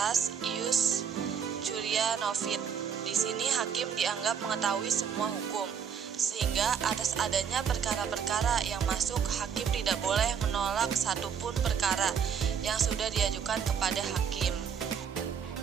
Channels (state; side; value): quieter; left; 7.4 dB